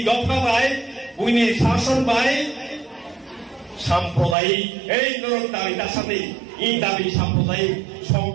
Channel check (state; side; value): drops out; left; at 4.4 s